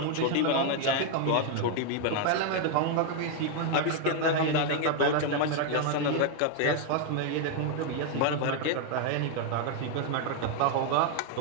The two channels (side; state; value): both; different; correlation 0.00